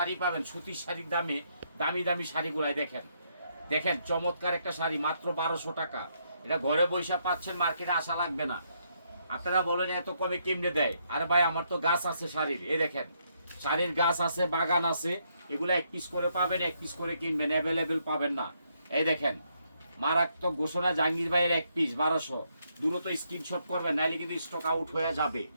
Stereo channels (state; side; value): inverted; both; correlation -0.75